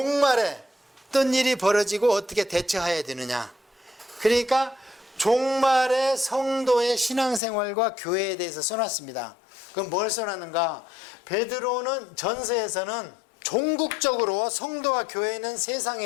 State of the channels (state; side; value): drops out; right; at 7.4 s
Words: 어떤 일이 벌어지고 어떻게 대처해야 되느냐. 그러니까 종말의 성도의 신앙생활과 교회에 대해서 써놨습니다. 그럼 뭘 써놨는가? 베드로는 전서에서는 종국적으로 성도와 교회는